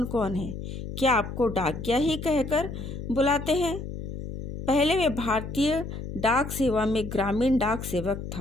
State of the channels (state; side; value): noise; left; hum, 8 dB below the sound